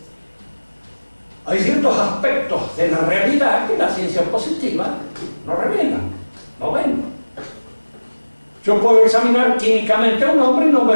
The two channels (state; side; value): inverted; both; correlation -1.00